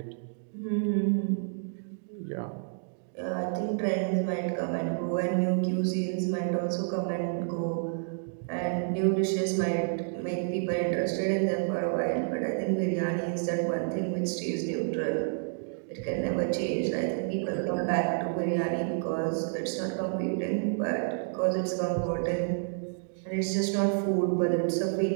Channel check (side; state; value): left; silent; digital silence